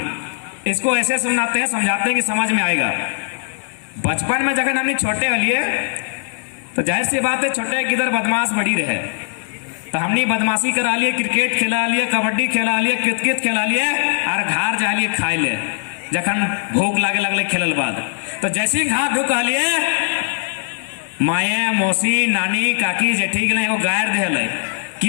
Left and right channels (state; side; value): silent; right; digital silence